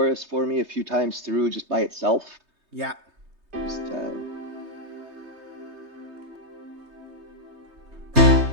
for me a few times through just by itself? Yeah. Just,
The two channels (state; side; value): late; left; 3.2 ms